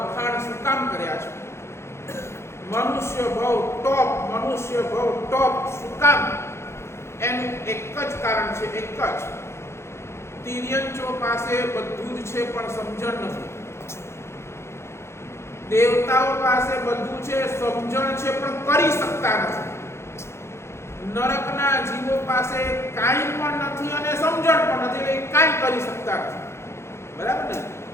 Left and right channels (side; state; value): right; late; 0.13 ms